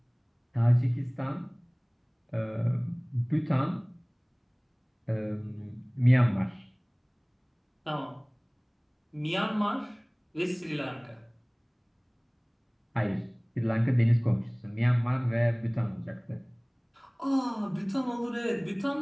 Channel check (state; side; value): identical; both; correlation 1.00